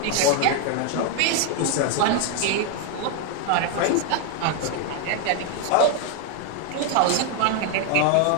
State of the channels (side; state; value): both; different; correlation 0.01